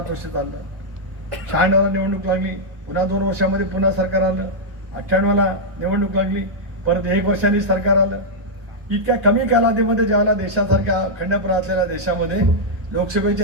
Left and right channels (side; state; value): left; late; 1.3 ms